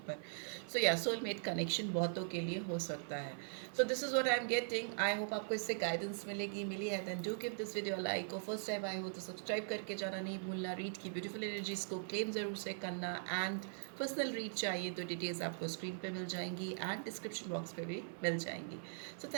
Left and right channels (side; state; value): left; silent; digital silence